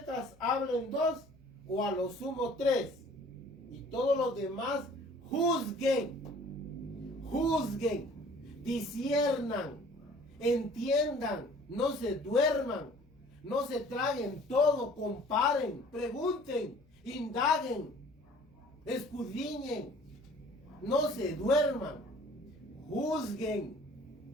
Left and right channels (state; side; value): noise; left; hum, 30 dB below the sound